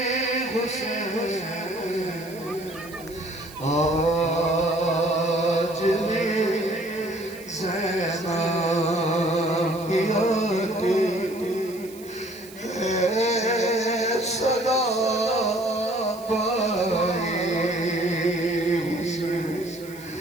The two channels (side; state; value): right; noise; hiss, 20 dB below the sound